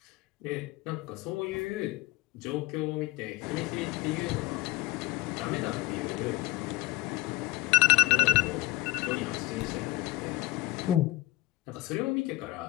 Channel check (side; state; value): right; quieter; 19.8 dB